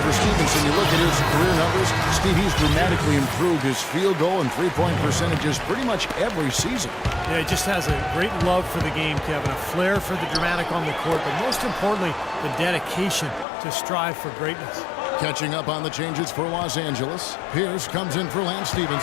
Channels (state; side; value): drops out; right; at 13.5 s